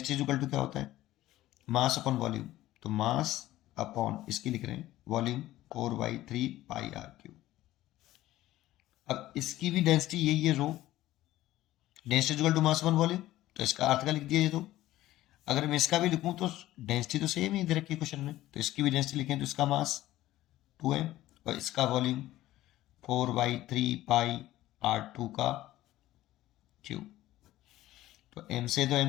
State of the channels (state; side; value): quieter; right; 15.3 dB